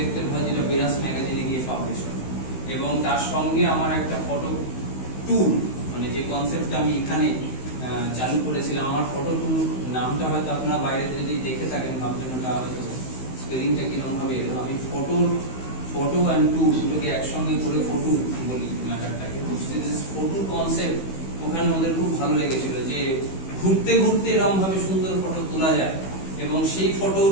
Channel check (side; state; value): right; late; 16 ms